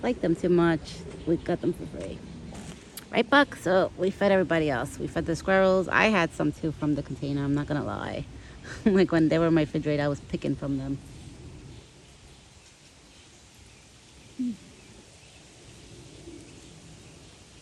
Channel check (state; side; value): identical; both; correlation 1.00